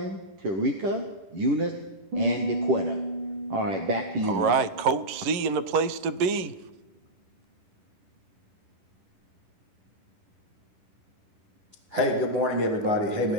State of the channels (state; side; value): late; left; 11 ms